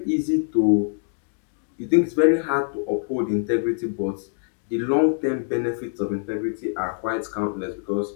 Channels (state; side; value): silent; right; digital silence